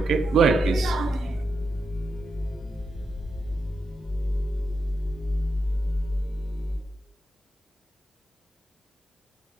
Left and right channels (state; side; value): normal; both; correlation 0.86